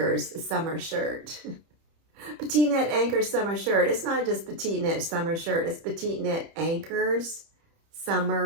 summer shirt. PetiteKnit Anker summer shirt. It's not just PetiteKnit summer shirt. It's PetiteKnit Anker's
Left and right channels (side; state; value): left; late; 30 ms